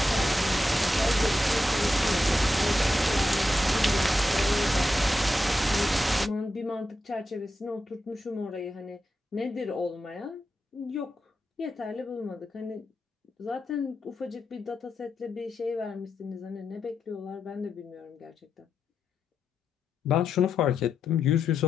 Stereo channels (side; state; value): both; normal; correlation 0.87